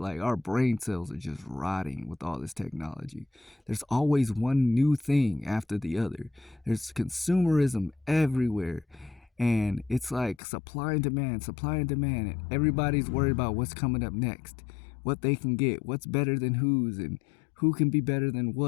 our brain cells are just rotting with all this technology. There's always one new thing after the other. There's consumerism everywhere. And it's like supply and demand, and everybody's worried about what's coming up next, what they can get, what's better than whose, and who can be better than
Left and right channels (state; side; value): drops out; right; at 10.4 s